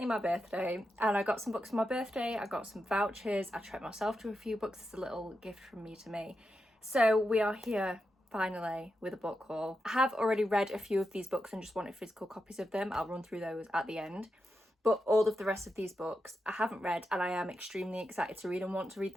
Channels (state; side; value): normal; both; correlation 0.88